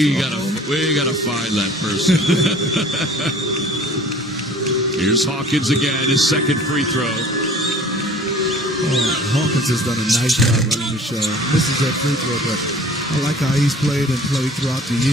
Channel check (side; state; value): both; normal; correlation 0.48